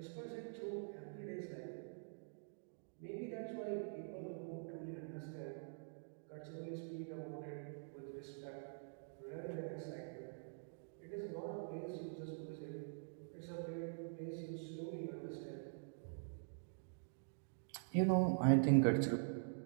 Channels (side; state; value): left; silent; digital silence